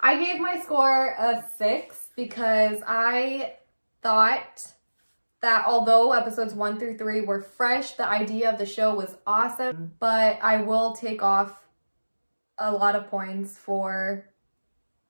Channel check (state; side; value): inverted; both; correlation -1.00